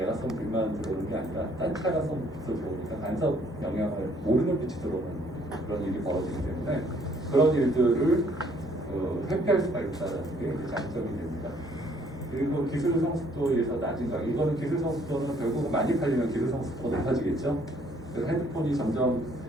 쏜 빛만 들어오는 게 아니라 다른 차가 쏜 빛도 들어오니까 간섭 영향을 모르는 빛이 들어오는 그런 일이 벌어지기 때문에 그런 일들을 회피할 수가 있다는 게 장점이 됩니다. 그리고 기술 성숙도에서 낮은 가격. 이거는 기술 성숙도는 결국 많이 팔리면 기술 성숙도가 높아지겠죠. 그래서 핸드폰이 점점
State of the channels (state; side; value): normal; both; correlation 0.64